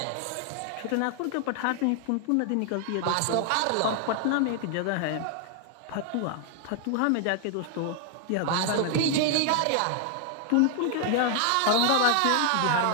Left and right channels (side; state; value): both; different; correlation 0.00